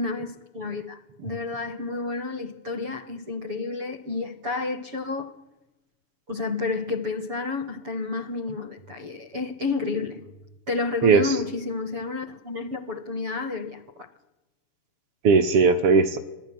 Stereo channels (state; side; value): late; left; 6.9 ms